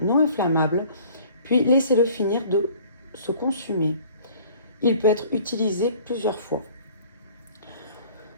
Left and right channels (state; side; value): inverted; both; correlation -0.51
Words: non inflammable, puis laissez-le finir de se consumer. Il peut être utilisé plusieurs fois.